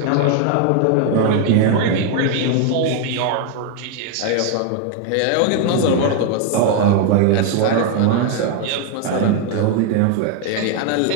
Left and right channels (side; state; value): both; different; correlation 0.01